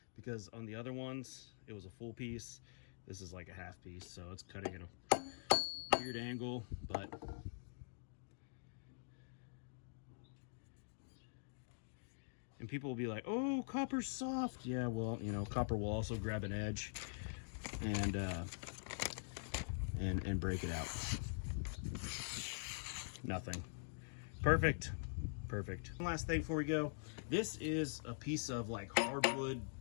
because on the other ones it was a full piece. This is like a half piece, so it's cutting at a weird angle, but and people will be like, oh, copper's soft. Yeah, well, you know, copper will also grab an edge and break it out. Nothing. Perfect. Perfect. One last thing before we go. This is a piece of like hardwood,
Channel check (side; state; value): right; silent; digital silence